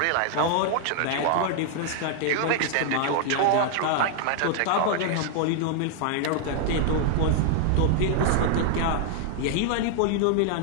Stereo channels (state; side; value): different; both; correlation 0.00